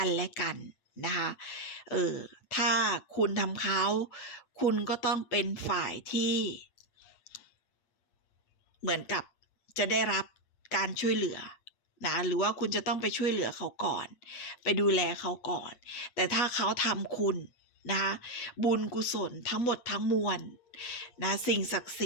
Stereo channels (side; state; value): right; late; 8.6 ms